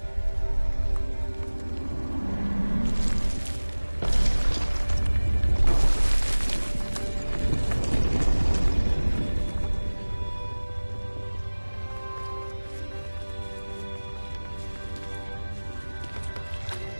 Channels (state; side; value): inverted; both; correlation -1.00